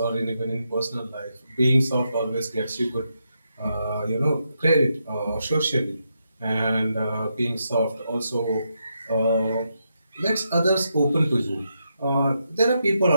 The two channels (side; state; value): both; inverted; correlation -0.82